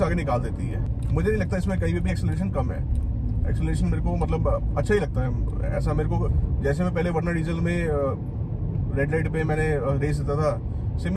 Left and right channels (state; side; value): identical; both; correlation 1.00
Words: आगे निकाल देती है। मुझे नहीं लगता इसमें कहीं भी एक्सेलरेशन कम है। एक्सेलरेशन मेरे को मतलब अच्छा ही लगता है। ऐसा मेरे को, जैसे मैं पहले वरना डीजल में रेड लाइट पे मैंने रेस देता था,